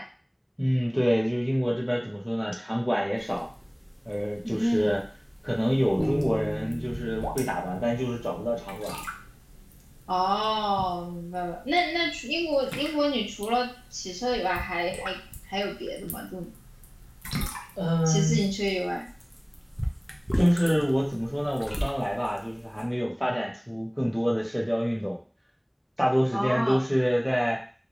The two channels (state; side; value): identical; both; correlation 1.00